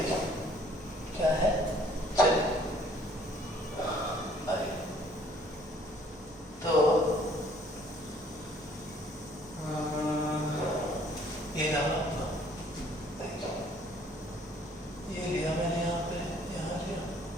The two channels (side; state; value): both; normal; correlation 0.59